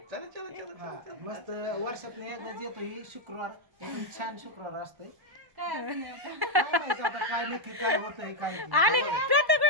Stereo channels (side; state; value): left; late; 1.1 ms